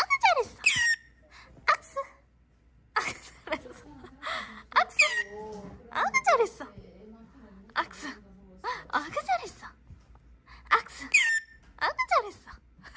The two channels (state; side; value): identical; both; correlation 1.00